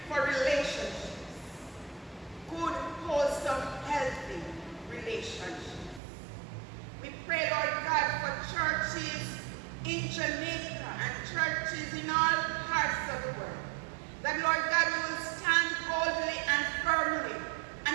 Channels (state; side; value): drops out; left; at 6.0 s